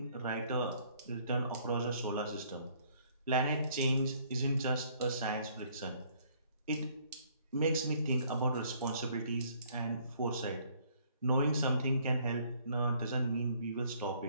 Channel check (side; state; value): both; inverted; correlation -0.62